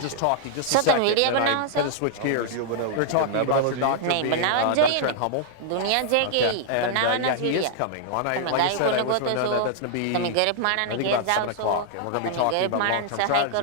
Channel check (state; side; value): different; both; correlation -0.01